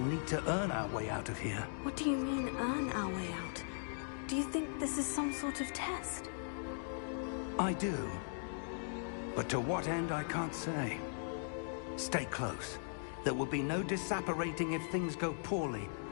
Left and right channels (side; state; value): right; silent; digital silence